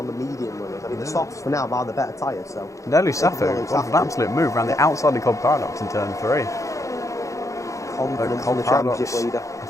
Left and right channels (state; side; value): late; right; 0.15 ms